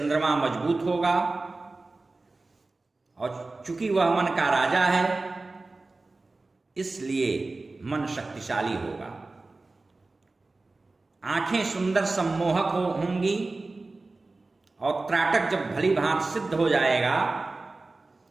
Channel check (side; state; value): left; quieter; 3.4 dB